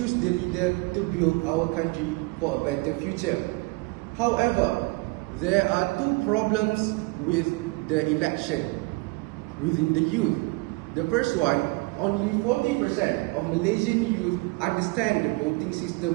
the leader to build our country for a better future. However, there are two problems with the election within the youth. The first one, only 40% of Malaysian youth understand the voting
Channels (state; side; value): quieter; left; 25.8 dB